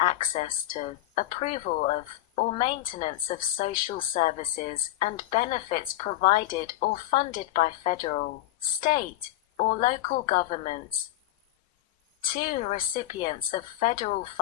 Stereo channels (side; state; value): right; quieter; 14.8 dB